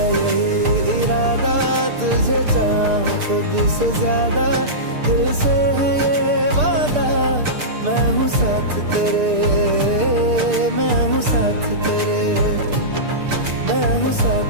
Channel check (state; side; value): late; left; 6.7 ms